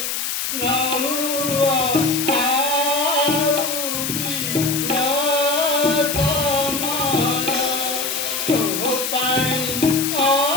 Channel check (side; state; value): left; noise; hiss, 2 dB below the sound